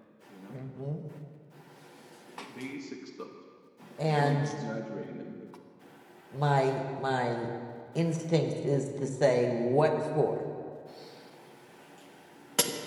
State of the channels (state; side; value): identical; both; correlation 1.00